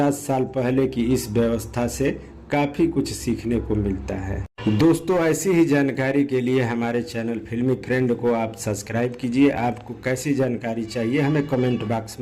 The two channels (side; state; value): both; identical; correlation 1.00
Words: साल पहले की इस व्यवस्था से काफी कुछ सीखने को मिलता है। दोस्तों, ऐसी ही जानकारी के लिए हमारे चैनल फिल्मी फ्रेंड को आप सब्सक्राइब कीजिए। आपको कैसी जानकारी चाहिए हमें कमेंट बॉक्स